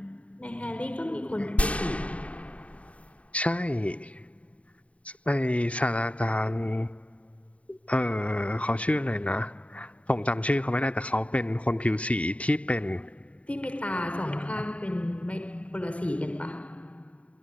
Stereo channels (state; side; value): late; right; 0.065 ms